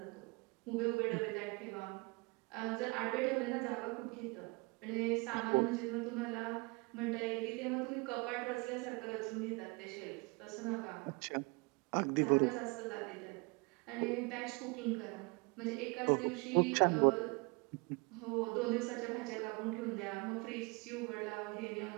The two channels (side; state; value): left; quieter; 28.6 dB